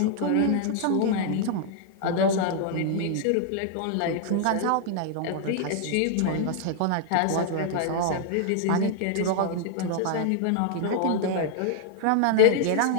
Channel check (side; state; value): both; different; correlation 0.00